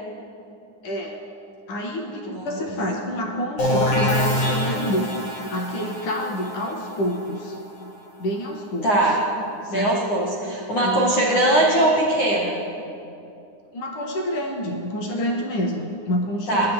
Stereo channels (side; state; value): right; late; 9.8 ms